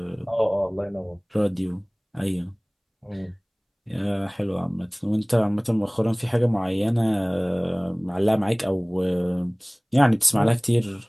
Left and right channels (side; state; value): both; identical; correlation 1.00